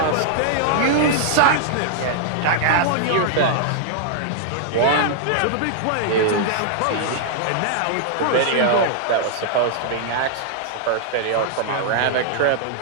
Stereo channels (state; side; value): different; both; correlation -0.01